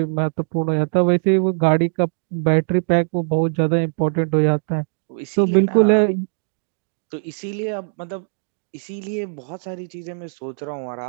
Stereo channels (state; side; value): silent; left; digital silence